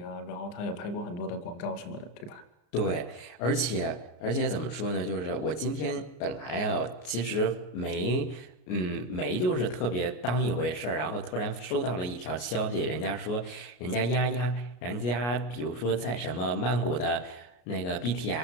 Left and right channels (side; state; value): right; late; 33 ms